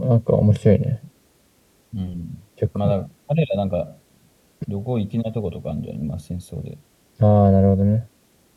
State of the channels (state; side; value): identical; both; correlation 1.00